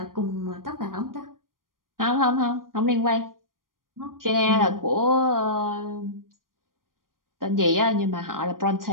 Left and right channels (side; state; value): left; late; 0.91 ms